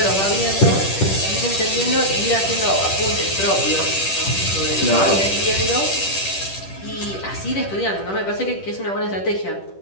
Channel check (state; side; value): late; right; 10 ms